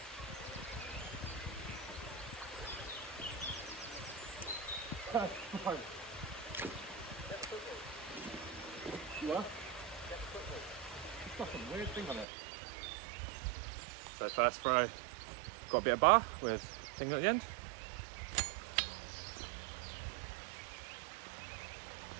You are? It's got some weird thing on it. So first throw, got a bit of bar with thing at the end.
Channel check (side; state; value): left; drops out; at 12.2 s